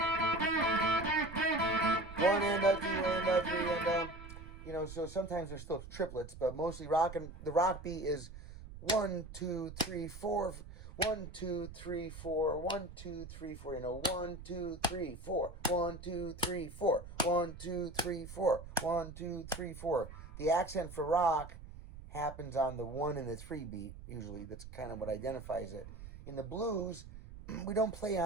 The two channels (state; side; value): noise; right; rumble, 14 dB below the sound